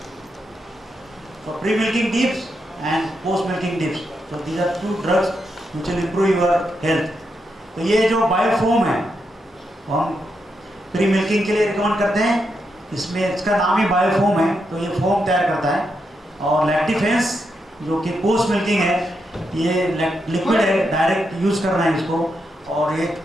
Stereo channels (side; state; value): both; normal; correlation 0.83